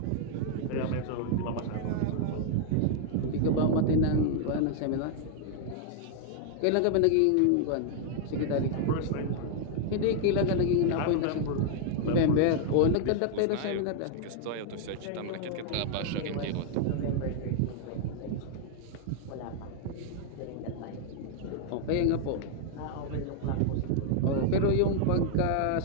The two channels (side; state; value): both; different; correlation 0.00